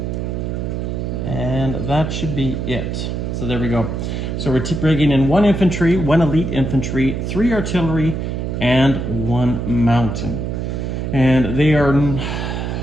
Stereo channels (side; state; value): right; noise; hum, 3 dB below the sound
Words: and that should be it. So there we go. So we're bringing in 1 infantry, 1 elite infantry, 3 artillery, and 1 mountain. And they are,